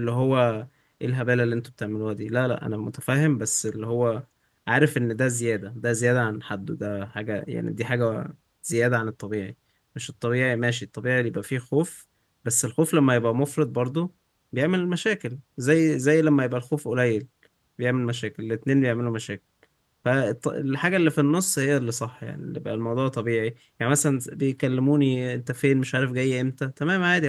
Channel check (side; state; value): both; identical; correlation 1.00